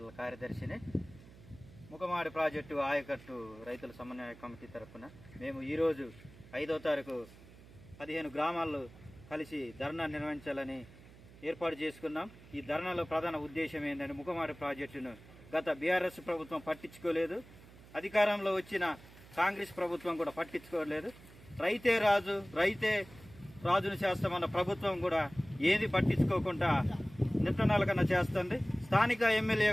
కార్యదర్శిని. ముఖమాడి project ఆయకట్టు రైతుల సమన్వయ కమిటీ తరఫున మేము ఈరోజు 5వ తారీఖు 15 గ్రామాల్లో కలిసి ధర్నా నిర్వహించాలని ఏర్పాటు చేసుకున్నాం. ఈ ధర్నాలో ప్రధాన ఉద్దేశం ఏంటంటే, ముఖమాడి ప్రాజెక్టును గత బీఆర్ఎస్ ప్రభుత్వం పట్టించుకోలేదు, అధికారంలో వచ్చిన కాంగ్రెస్ ప్రభుత్వం కూడా పట్టించుకోలేదు. రైతే రాజు రైతే రాజును చేస్తామన్న ప్రభుత్వం కూడా ఏది పట్టించుకోకుండా నిట్టనాల కన్నా చేస్తుంది. స్థానిక ఎమ్మెల్యే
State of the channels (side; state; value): right; noise; hum, 21 dB below the sound